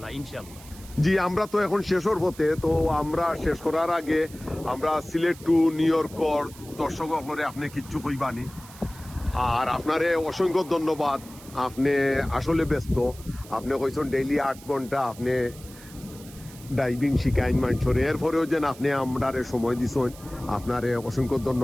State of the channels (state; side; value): noise; right; hiss, 20 dB below the sound